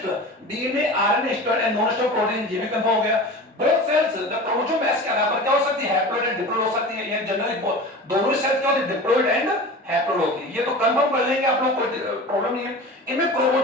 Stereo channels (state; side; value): normal; both; correlation 0.34